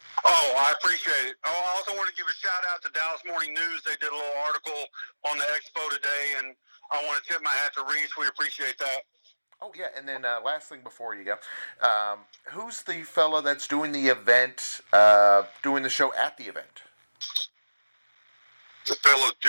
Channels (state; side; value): inverted; both; correlation -1.00